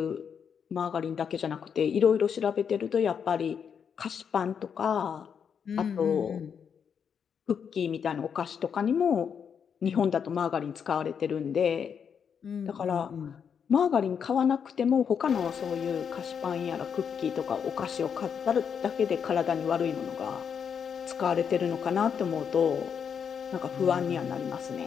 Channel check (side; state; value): right; quieter; 7.2 dB